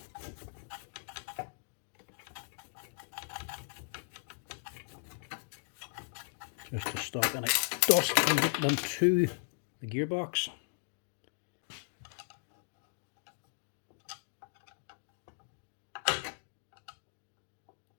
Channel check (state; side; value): silent; right; digital silence